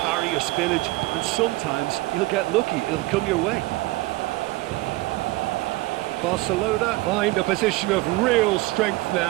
or spillage, and sometimes you'll get lucky. It'll come your way. Barcelona find a position of real strength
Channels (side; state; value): left; quieter; 20.4 dB